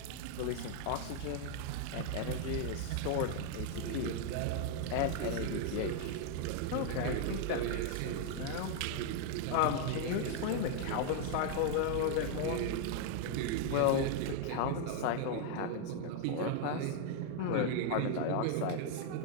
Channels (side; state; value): both; different; correlation 0.00